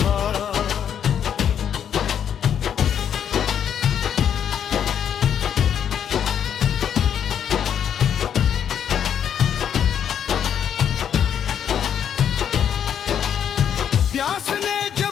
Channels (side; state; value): right; quieter; 8.8 dB